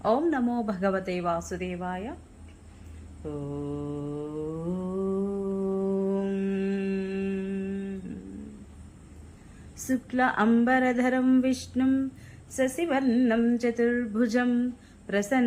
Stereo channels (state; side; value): identical; both; correlation 1.00